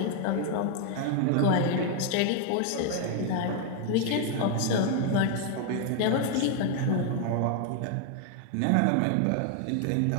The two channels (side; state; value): both; different; correlation 0.00